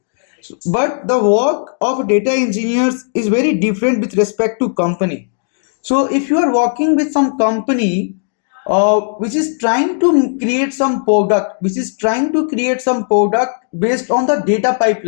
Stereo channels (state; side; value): silent; right; digital silence